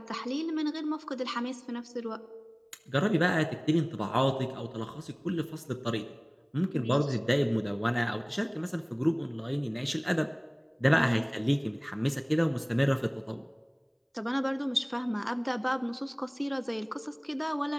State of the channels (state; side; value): identical; both; correlation 1.00